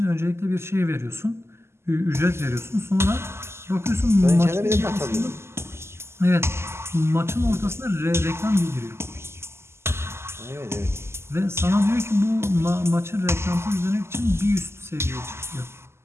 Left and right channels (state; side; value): late; left; 0.12 ms